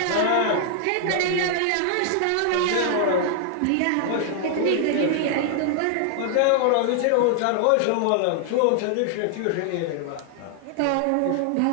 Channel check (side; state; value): both; different; correlation 0.00